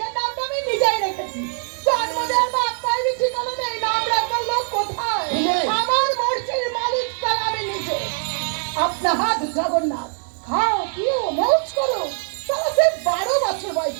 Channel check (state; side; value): silent; left; 56 dB below the other